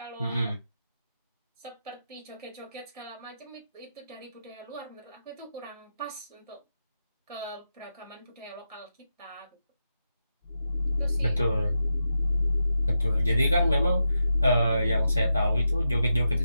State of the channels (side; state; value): both; inverted; correlation -0.86